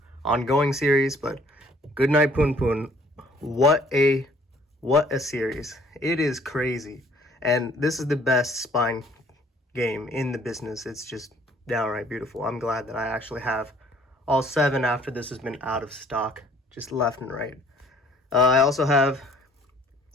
ongoing series, but Good Night Punpun, what a series. It is crazy. And this is the best spine game in the business. It's just downright beautiful. I'm glad that I actually have all 7 after this has been out of stock, just left and right. I also have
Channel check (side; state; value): both; normal; correlation 0.58